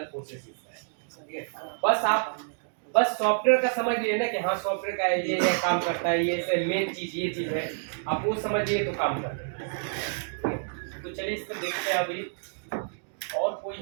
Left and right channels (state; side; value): silent; left; digital silence